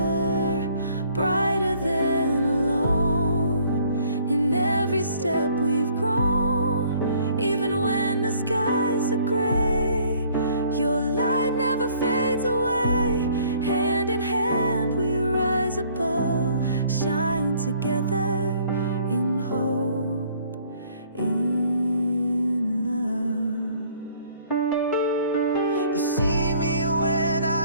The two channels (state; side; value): inverted; both; correlation -0.59